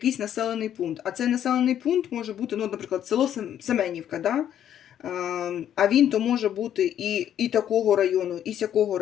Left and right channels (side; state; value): right; quieter; 10.3 dB